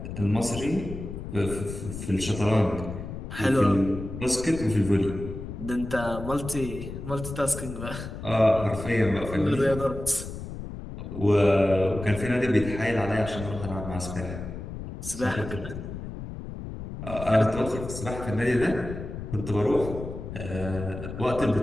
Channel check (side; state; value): left; noise; rumble, 9 dB below the sound